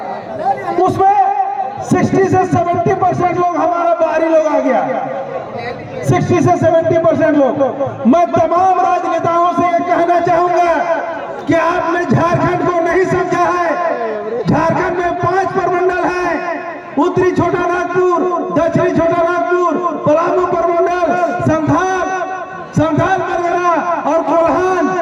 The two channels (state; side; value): identical; both; correlation 1.00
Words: उसमें 60 से 70% लोग हमारा बाहरी लोग आ गया, 60 से 70% लोग। मैं तमाम राजनेताओं से ये कहना चाहूंगा कि आपने झारखंड को नहीं समझा है। झारखंड में 5 प्रमंडल है, उत्तरी छोटा नागपुर, दक्षिणी छोटा नागपुर, पलामू प्रमंडल, संथाल परगना और कोल्हान।